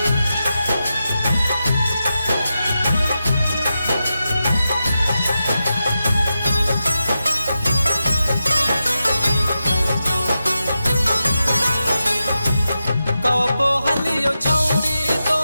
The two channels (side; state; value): both; inverted; correlation -0.90